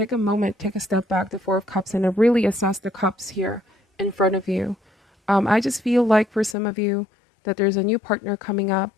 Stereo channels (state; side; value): drops out; right; at 6.6 s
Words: a moment, take a step back, the Four of Cups, and really assess the cups here in front of you. I just feel like for some of you that there's a new partner coming up,